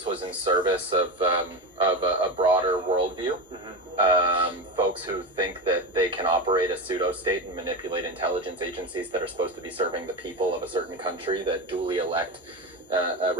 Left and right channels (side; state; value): both; normal; correlation 0.19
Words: was in service of a broader worldview. Folks who think that they can operate a pseudo-state and manipulate intelligence agencies that are supposed to be serving the people of a certain country that duly elect